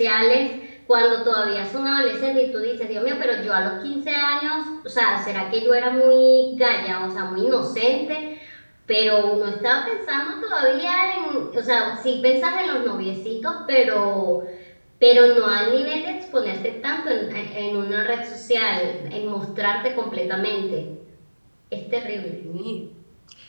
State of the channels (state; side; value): inverted; both; correlation -1.00